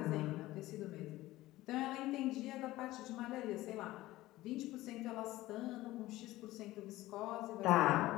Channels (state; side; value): quieter; right; 17.1 dB